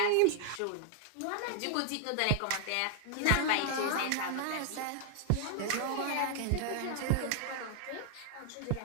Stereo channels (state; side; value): different; both; correlation 0.00